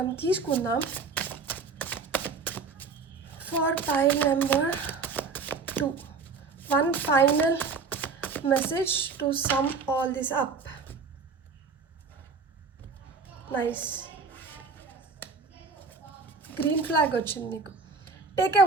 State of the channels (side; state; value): left; quieter; 4.7 dB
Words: తీసుకుందాం. For pile number 2, one final message to some all this up. Nice. Green flag వచ్చింది మీకు. Take a